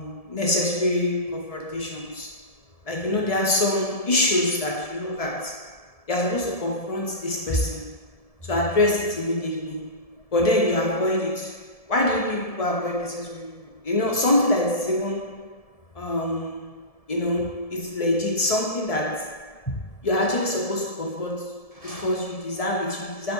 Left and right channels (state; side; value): late; right; 1.7 ms